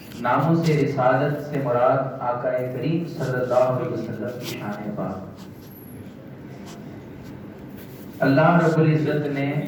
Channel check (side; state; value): both; identical; correlation 1.00